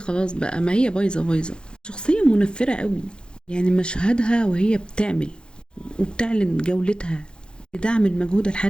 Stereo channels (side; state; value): right; late; 0.050 ms